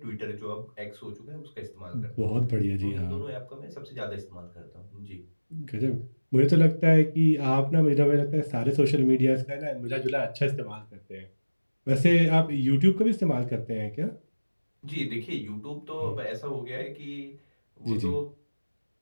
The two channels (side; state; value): both; inverted; correlation -1.00